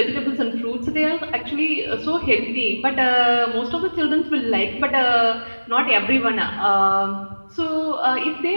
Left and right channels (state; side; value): inverted; both; correlation -1.00